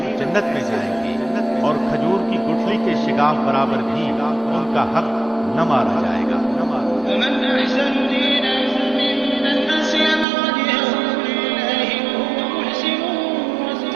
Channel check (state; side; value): drops out; left; at 10.2 s